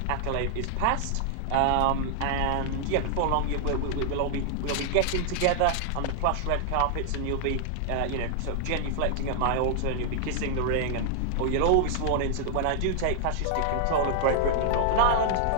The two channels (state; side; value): different; both; correlation 0.00